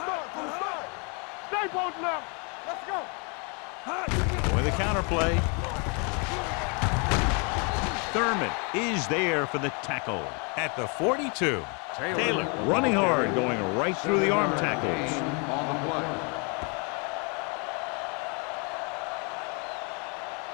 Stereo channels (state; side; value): quieter; right; 34.4 dB